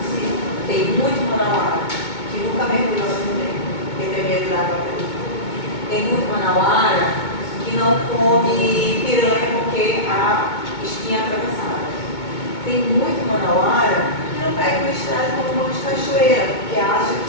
Tem muito manauara que não come piranha porque a espinha é atravessada. Tem muito manauara que não pega uma estrada como um monte de cachoeira, porque acha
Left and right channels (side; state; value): right; late; 2.2 ms